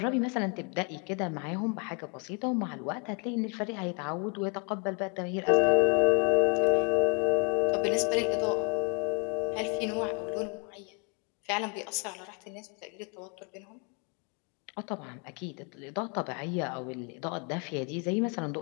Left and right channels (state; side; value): quieter; right; 36.1 dB